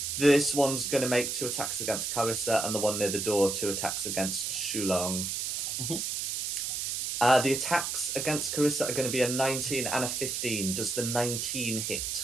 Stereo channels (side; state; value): right; noise; hiss, 2 dB below the sound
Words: This one's going to make 2 attacks against Carissa, and the one near the door 2 attacks against Shulong. Mm-hmm. The attacks against Carissa are going to be a 19 and a 15. Does the 19